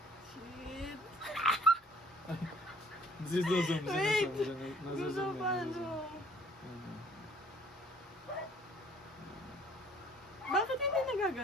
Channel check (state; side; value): normal; both; correlation 0.57